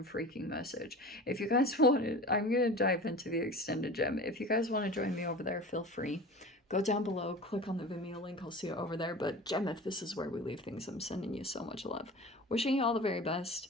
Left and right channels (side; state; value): both; normal; correlation 0.36